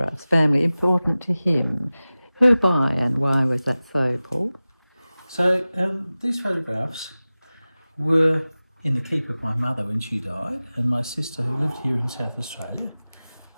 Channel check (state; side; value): inverted; both; correlation -0.97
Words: family important to him. Who by and why was that so, Paul? So these photographs were in the keep of my mother when she died, and my sister, who lived here in South Australia,